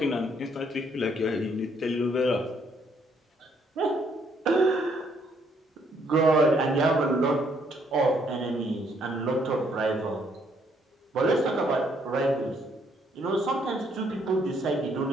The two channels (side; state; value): both; normal; correlation 0.69